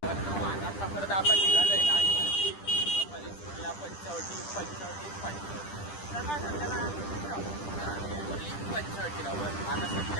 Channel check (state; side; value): late; right; 10 ms